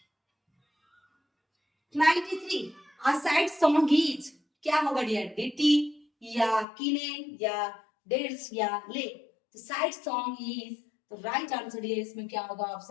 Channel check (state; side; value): drops out; right; at 6.7 s